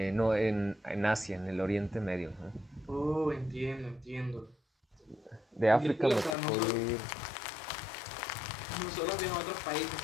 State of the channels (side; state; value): right; drops out; at 6.4 s